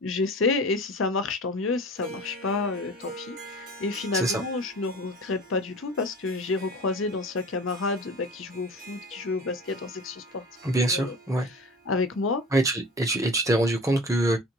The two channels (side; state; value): both; normal; correlation 0.38